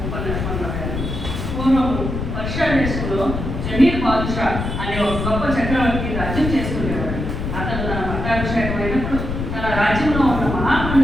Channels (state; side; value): noise; left; rumble, 4 dB below the sound